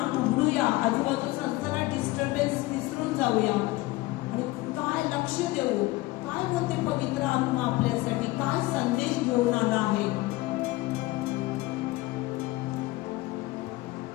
उघडूया, आजूबाजूचा सगळा डिस्टर्बन्स विसरून जाऊया आणि काय लक्ष देऊ, काय बोलते पवित्र आत्मा आपल्यासाठी, काय संदेश घेऊन आला आहे.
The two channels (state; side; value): quieter; right; 19.4 dB